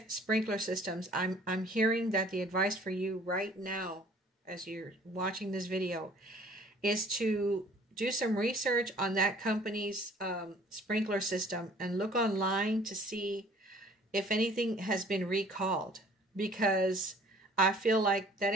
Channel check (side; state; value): both; normal; correlation 0.54